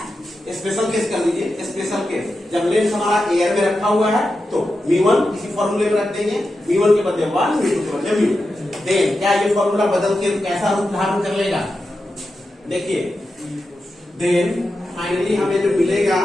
Special case कर लीजिए, स्पेशल केस जब लेंस हमारा एयर में रखा हुआ है तो μ1 इसी फॉर्मूले में रख देंगे, μ1 के बदले 1, μ2 के बदले म्यू। देन क्या ये फॉर्मूला बदल के कैसा रूप धारण कर लेगा, देखिए देन फाइनली हमें जो मिलेगा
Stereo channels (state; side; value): normal; both; correlation 0.90